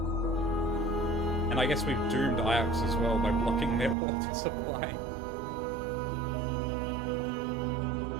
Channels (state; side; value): drops out; left; at 4.0 s